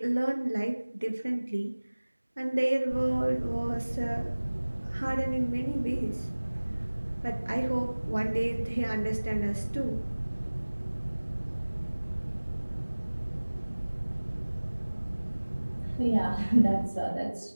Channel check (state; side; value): inverted; both; correlation -1.00